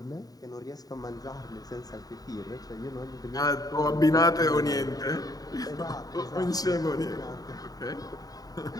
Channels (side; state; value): right; late; 0.18 ms